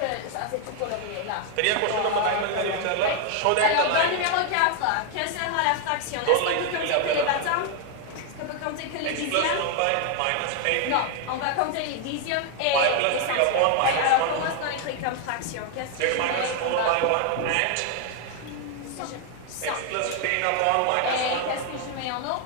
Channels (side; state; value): both; different; correlation 0.00